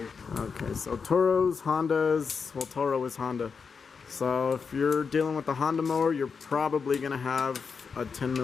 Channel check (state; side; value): quieter; right; 5.6 dB